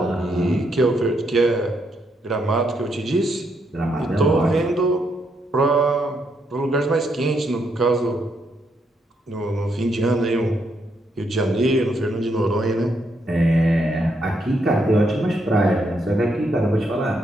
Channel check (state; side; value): normal; both; correlation 0.77